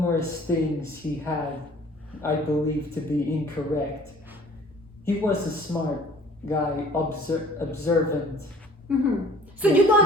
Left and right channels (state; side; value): normal; both; correlation 0.51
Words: things he had, I believe, to be incorrect, he was a smart guy, observant. So you